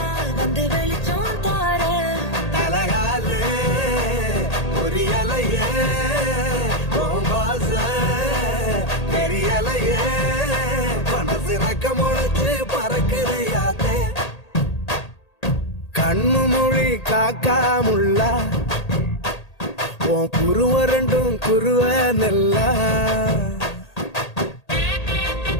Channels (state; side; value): late; right; 1.8 ms